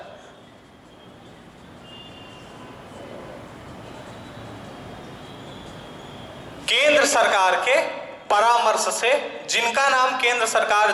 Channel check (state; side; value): identical; both; correlation 1.00